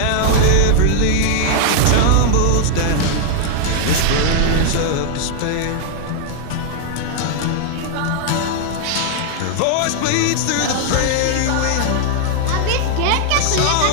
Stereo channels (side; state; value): both; different; correlation 0.00